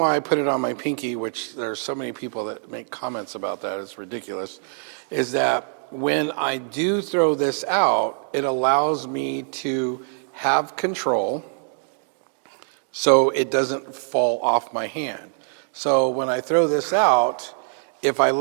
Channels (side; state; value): left; silent; digital silence